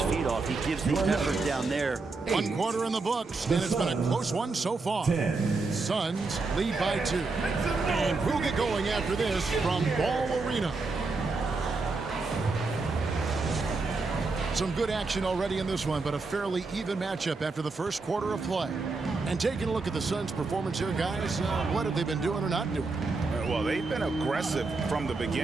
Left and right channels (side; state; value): left; quieter; 3.8 dB